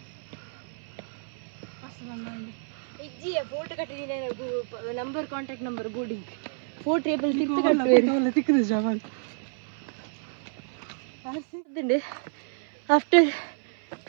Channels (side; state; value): left; silent; 59 dB below the other